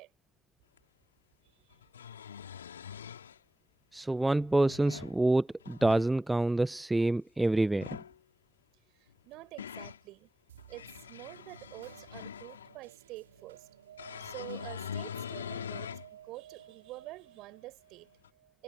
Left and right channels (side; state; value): both; normal; correlation 0.90